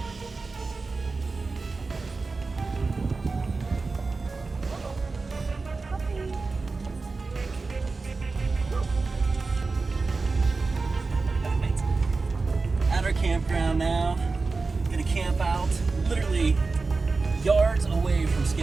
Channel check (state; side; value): quieter; left; 4.0 dB